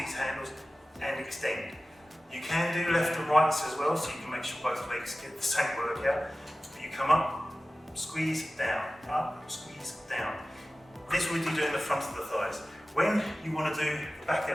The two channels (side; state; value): both; normal; correlation 0.96